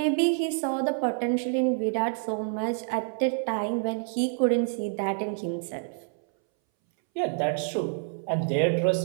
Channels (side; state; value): left; silent; 60 dB below the other